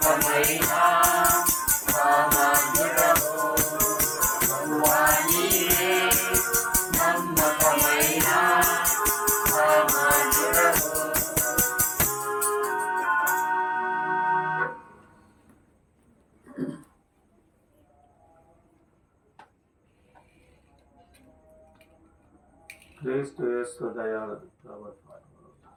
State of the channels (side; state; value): both; identical; correlation 1.00